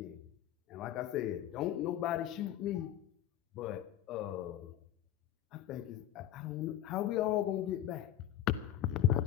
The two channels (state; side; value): quieter; right; 12.2 dB